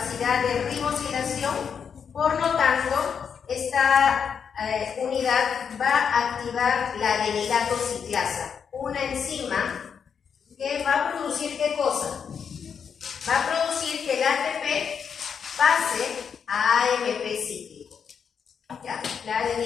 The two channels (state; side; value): quieter; right; 6.9 dB